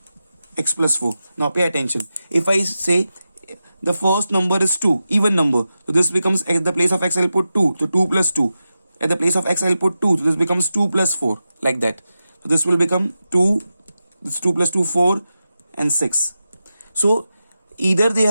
x plus 4. Now pay attention. If I say the first number is 2, even number, so this becomes, at the place of x I'll put 2, so 2 plus 2. At the place of x I'll put 2, so this becomes 2 plus 4, like that. So this will become 2, this 2 plus 2, 4 and 6. So either they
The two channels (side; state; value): both; inverted; correlation -0.92